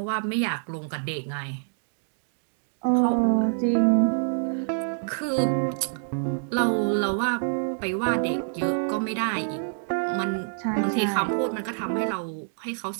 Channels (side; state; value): left; silent; digital silence